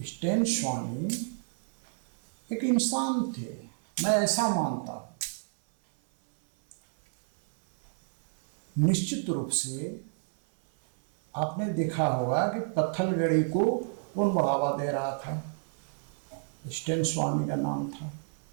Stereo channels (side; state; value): left; silent; 58 dB below the other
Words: स्टैन स्वामी एक इंसान थे, मैं ऐसा मानता हूँ। निश्चित रूप से आपने देखा होगा कि पत्थलगड़ी को कौन बढ़ावा दे रहा था? स्टैन स्वामी का नाम था।